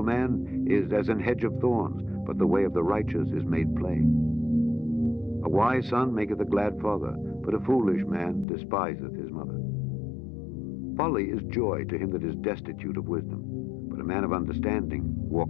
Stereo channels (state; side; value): drops out; right; at 8.5 s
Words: man is as an hedge of thorns, but the way of the righteous is made plain. A wise son maketh a glad father, but a foolish man despiseth his mother. Folly is joy to him that is destitute of wisdom, but a man of understanding